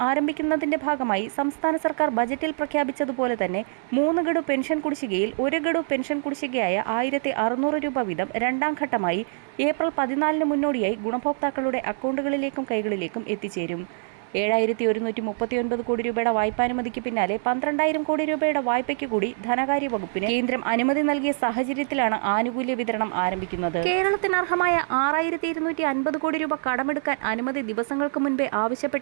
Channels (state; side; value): silent; left; 62 dB below the other